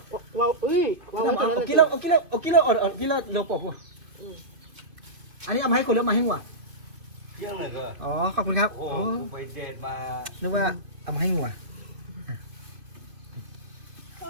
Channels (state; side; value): late; left; 2.5 ms